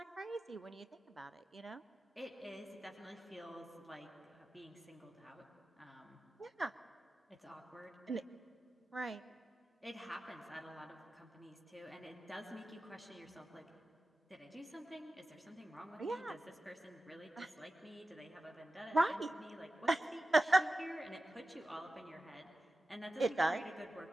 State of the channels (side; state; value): both; normal; correlation 0.94